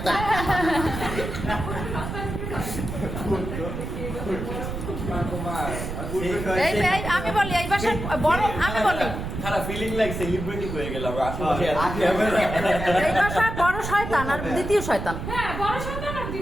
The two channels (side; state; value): right; noise; rumble, 6 dB below the sound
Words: এই এই আমি বলি এই বাসার বড়, আমি বলি খারাপ ফিলিং লাইক সেলিব্রিটি হয়ে গেলাম আশেপাশে ক্যামেরা। এই বাসার বড় শয়তান আর দ্বিতীয় শয়তান। হ্যাঁ, বড় সন্তান আর